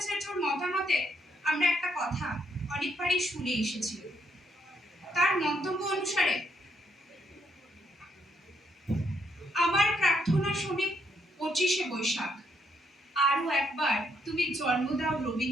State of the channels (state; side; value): normal; both; correlation 0.74